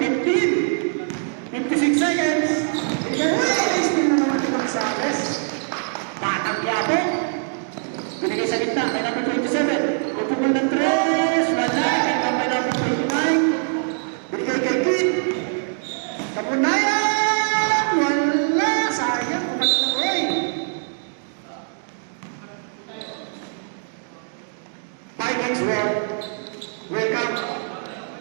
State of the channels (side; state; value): left; silent; digital silence